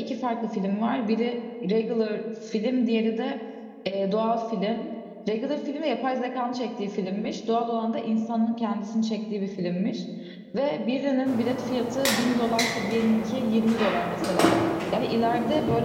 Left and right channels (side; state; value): both; identical; correlation 1.00